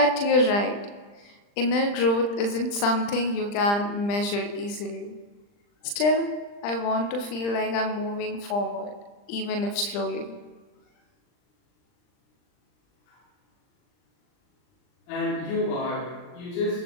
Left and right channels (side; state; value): right; late; 39 ms